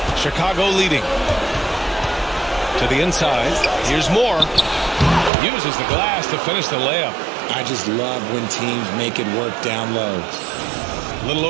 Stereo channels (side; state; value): left; drops out; at 5.3 s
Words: Chicago leading. To the inside. Here's Moore. Uses the glass to finish the layup. I just love when teams make it work down low. A little